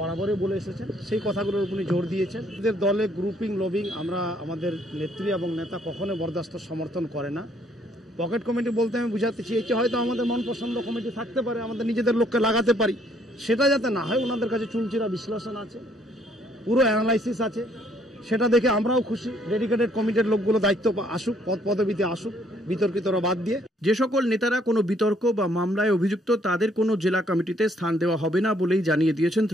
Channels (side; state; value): both; normal; correlation 0.66